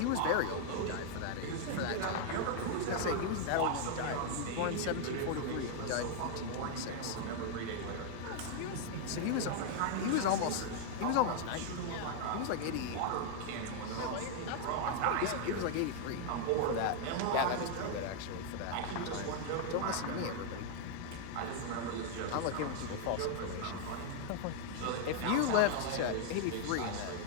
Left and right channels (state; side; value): different; both; correlation 0.00